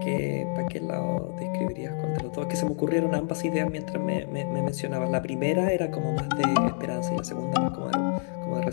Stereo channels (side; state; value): right; silent; 59 dB below the other